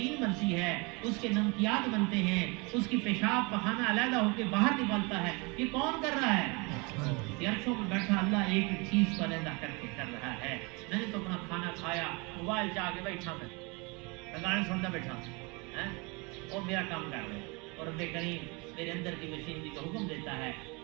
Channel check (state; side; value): quieter; left; 28.9 dB